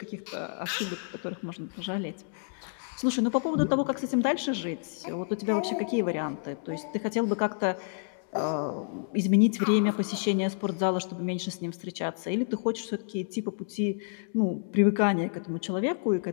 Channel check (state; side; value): silent; right; 58 dB below the other